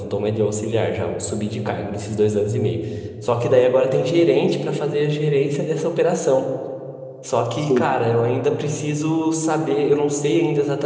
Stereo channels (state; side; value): identical; both; correlation 1.00